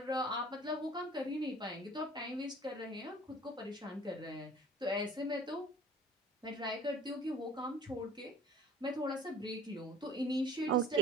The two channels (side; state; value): both; normal; correlation 0.49